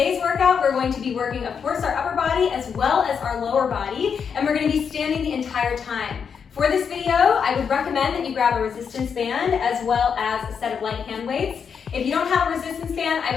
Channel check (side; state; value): right; quieter; 6.7 dB